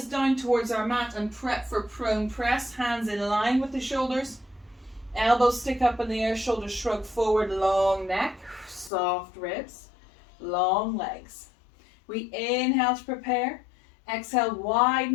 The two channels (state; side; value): drops out; right; at 8.9 s